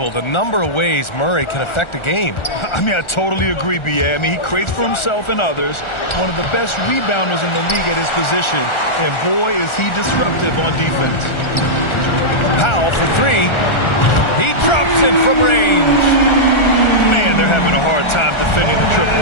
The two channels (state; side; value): late; right; 1.4 ms